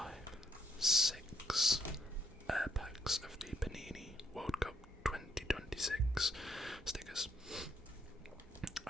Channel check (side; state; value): both; normal; correlation 0.73